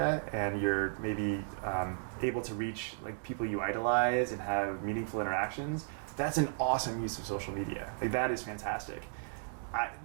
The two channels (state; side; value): silent; left; digital silence